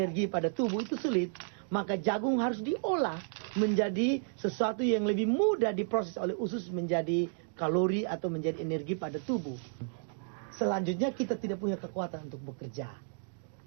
pada tubuh itu sulit. Maka jagung harus diolah menjadi sesuatu yang lebih mudah diproses oleh usus menjadi kalori atau menjadi energi pada tubuh. Selanjutnya kita tidak punya kekuatan untuk bekerja.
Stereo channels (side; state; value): left; silent; digital silence